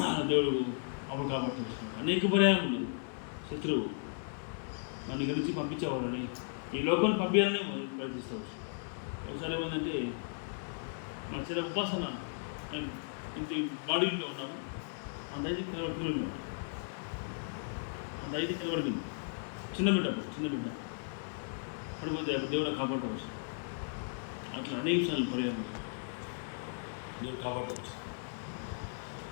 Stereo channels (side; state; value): right; silent; digital silence